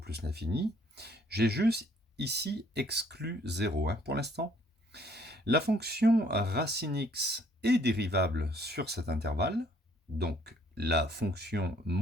l'infini. J'ai juste ici exclu 0 pour l'instant. La fonction racine x est dérivable sur cet intervalle, donc la fonction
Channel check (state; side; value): normal; both; correlation 0.62